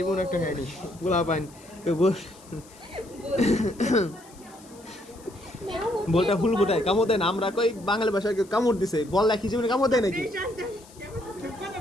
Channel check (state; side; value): noise; left; hiss, 24 dB below the sound